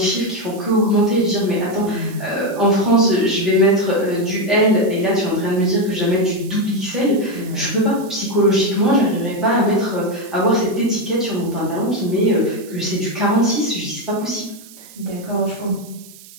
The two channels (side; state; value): right; noise; hiss, 20 dB below the sound